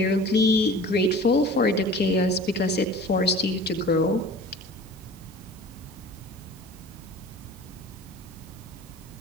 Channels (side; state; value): both; normal; correlation 0.43